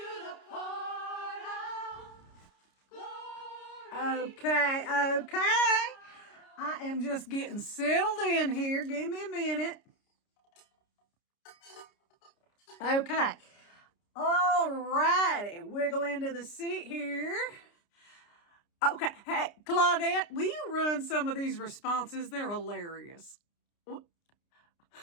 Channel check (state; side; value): late; right; 29 ms